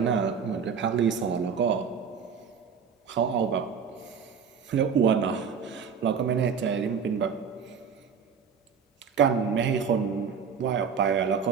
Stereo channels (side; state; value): left; quieter; 6.6 dB